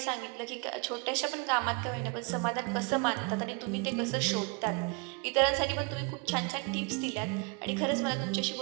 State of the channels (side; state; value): left; quieter; 29.8 dB